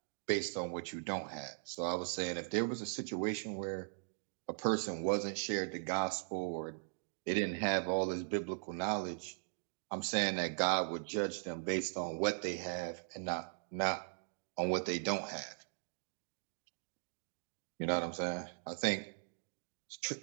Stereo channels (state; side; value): silent; left; digital silence